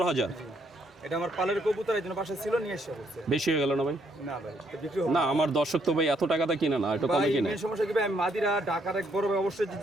এটা আমার পালের কবুতর, এই জন্য বাসায় ছিল, নিয়ে এসে বলছে। বেশি হয়ে গেল না ভাই? না ভাই, এটা বিক্রি হবে না, আমার দর্শক তো ভাই এত টাকাতে কিনে না, একটু কমে ভাই। কিনে। মেন সমস্যা কি ভাই, আমি মাদিরা ঢাকার এক বড় ভাই, অবশ্যই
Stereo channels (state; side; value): normal; both; correlation 0.72